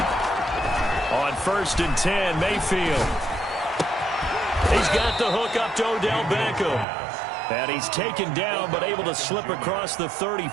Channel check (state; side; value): drops out; left; at 6.9 s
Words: First and 10, Mayfield. He's got the hook up to Odell Beckham. And he's taken down, but able to slip across the